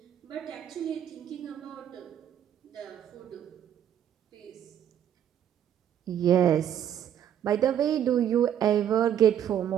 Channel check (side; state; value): left; quieter; 9.9 dB